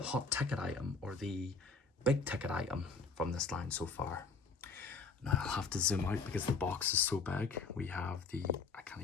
ticket item, or the big ticket item from this line so far. Now I'll have to zoom out because the box is so big. We have I can't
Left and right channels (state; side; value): quieter; right; 4.4 dB